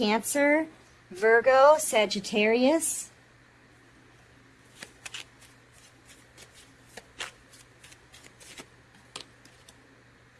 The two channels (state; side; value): identical; both; correlation 1.00